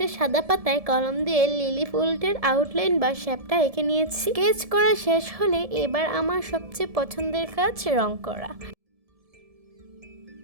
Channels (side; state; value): left; late; 1.7 ms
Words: সাদা পাতায় কলম দিয়ে লিলি ফুলটার আউটলাইন বা শেপটা এঁকে নিয়েছি। স্কেচ করা শেষ হলে এবার আমার সবচেয়ে পছন্দের কাজ রং করা।